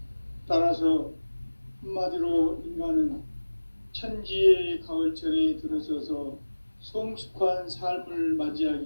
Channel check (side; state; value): both; inverted; correlation -1.00